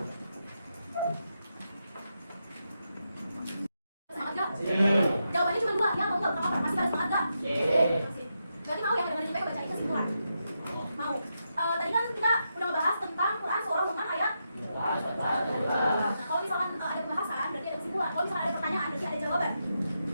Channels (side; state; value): both; inverted; correlation -0.85